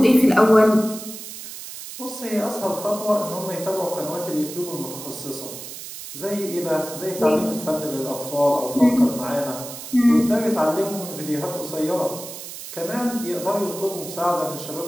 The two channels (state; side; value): noise; right; hiss, 11 dB below the sound